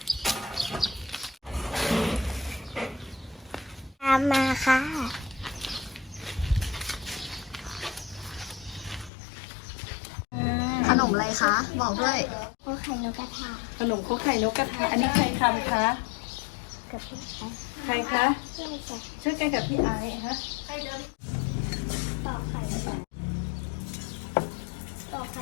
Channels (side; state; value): right; drops out; at 9.1 s